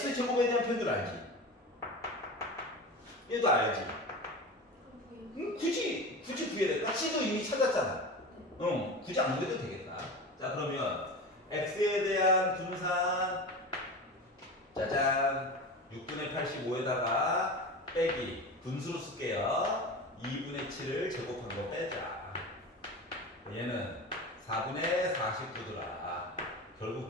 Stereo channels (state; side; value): normal; both; correlation 0.29